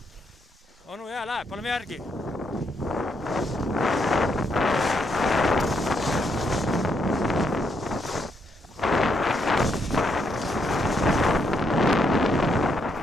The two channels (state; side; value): normal; both; correlation 0.76